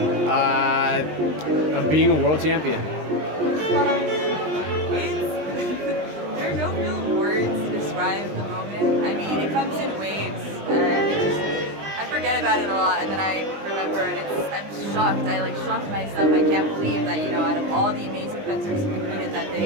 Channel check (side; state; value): left; late; 20 ms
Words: of being a world champion. There are no real words to describe the moment. I mean, it comes in waves, and I forget about it a lot, and then I remember, and I'm shocked. I shocked myself. I can't believe that, out of all the amazing fencers who competed that